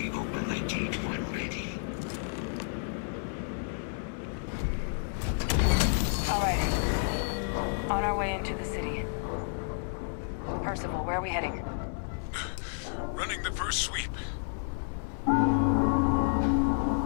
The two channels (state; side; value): silent; right; 57 dB below the other